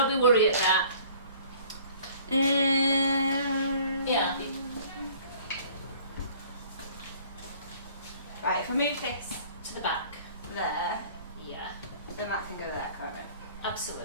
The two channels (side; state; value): both; inverted; correlation -0.52